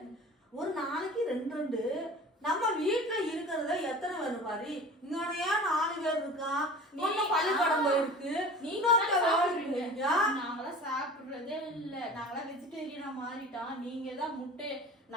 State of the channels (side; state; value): both; normal; correlation 0.39